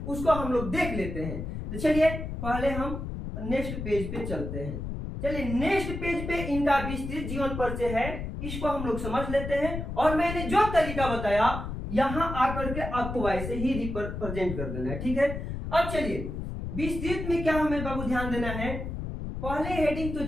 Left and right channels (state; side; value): noise; left; rumble, 6 dB below the sound